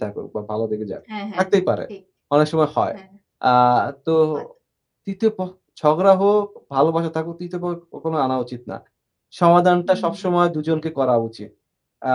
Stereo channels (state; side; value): identical; both; correlation 1.00